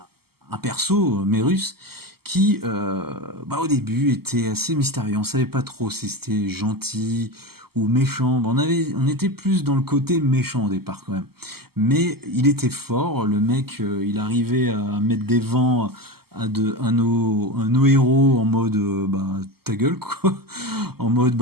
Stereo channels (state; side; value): late; left; 0.96 ms